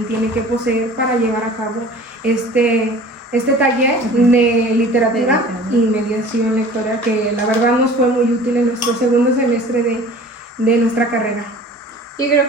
tiene que poseer para llevar a cabo este taller de literatura y mediación lectora, que la verdad nos fue muy útil en nuestro segundo semestre de nuestra carrera. Y creo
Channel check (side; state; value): both; normal; correlation 0.44